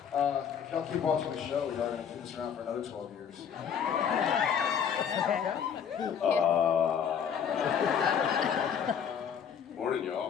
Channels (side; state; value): right; quieter; 7.9 dB